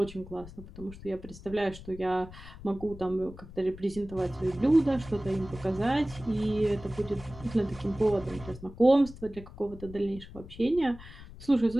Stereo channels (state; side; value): noise; left; rumble, 16 dB below the sound